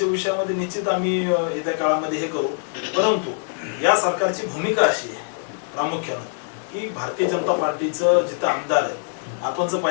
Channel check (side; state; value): right; silent; digital silence